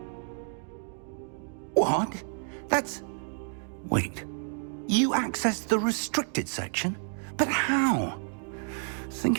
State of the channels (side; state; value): left; silent; 55 dB below the other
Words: What? That's... Wait. You accessed the restricted section? But how?